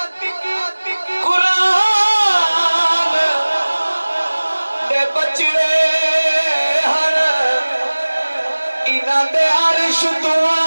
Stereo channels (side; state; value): both; inverted; correlation -1.00